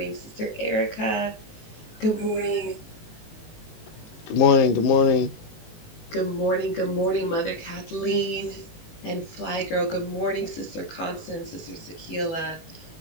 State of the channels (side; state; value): right; late; 19 ms